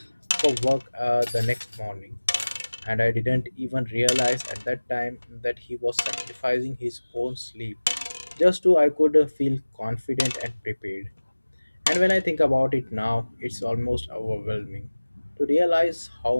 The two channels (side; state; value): both; inverted; correlation -1.00